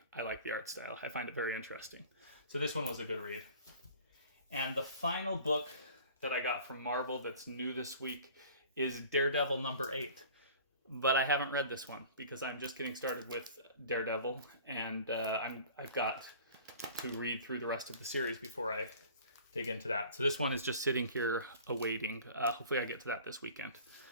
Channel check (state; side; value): inverted; both; correlation -0.45